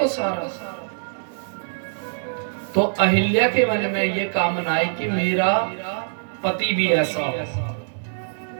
सारा, तो अहिल्या के मन में ये कामना आई कि मेरा पति भी ऐसा हो।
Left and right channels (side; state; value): left; silent; digital silence